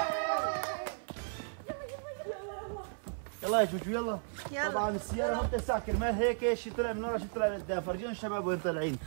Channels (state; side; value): silent; left; 55 dB below the other